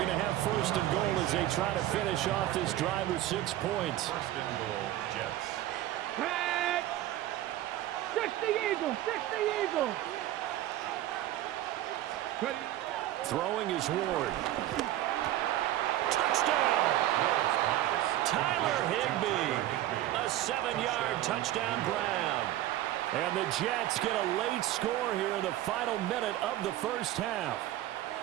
to have 1st and goal as they try to finish off this drive with 6 points. 1st and goal, Jets. Back. 60 Eagles. 60 Eagles. Ready. Throwing is Ward. Touchdown! Tyler Higbee. A 7-yard touchdown Brown. And the Jets get a late score here in the final minute of the first half.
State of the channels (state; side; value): quieter; left; 14.0 dB